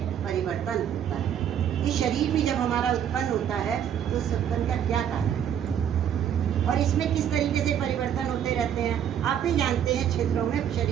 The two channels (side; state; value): left; quieter; 9.3 dB